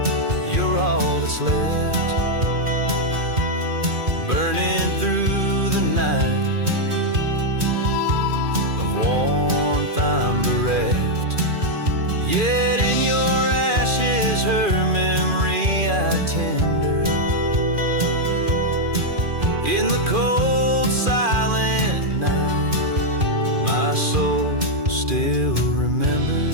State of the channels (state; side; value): late; left; 2.4 ms